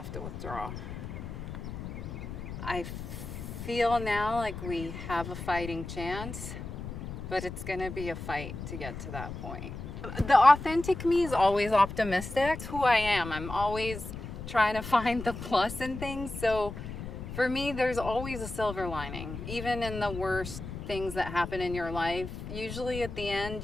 to withdraw. I feel now like we have a fighting chance, but it's gonna be a fight to get to that point. The authentic me is always optimistic. It's who I am. I'm always trying to find the plus in things. So for me, there's always a silver lining. Even in the worst things that happen in your life, usually at the end,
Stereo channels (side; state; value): left; noise; rumble, 8 dB below the sound